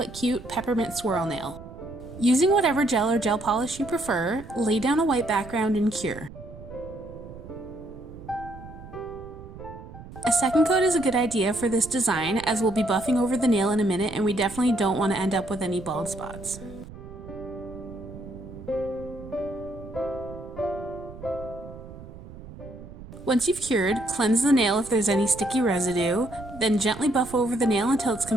cute peppermint swirl nail. Using whatever gel or gel polish you prefer, lay down a white background and cure. A second coat is a good idea for this design as we'll be buffing over the nail in a minute and we definitely don't want to end up with any bald spots. Once you've cured, cleanse the nail if there's any sticky residue, then gently buff over the nail until it's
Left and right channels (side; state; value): right; noise; rumble, 15 dB below the sound